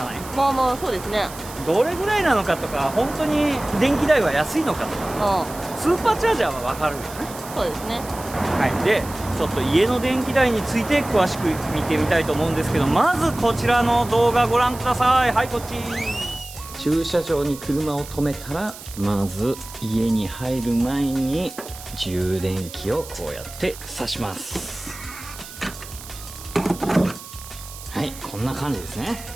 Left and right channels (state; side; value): noise; right; hiss, 15 dB below the sound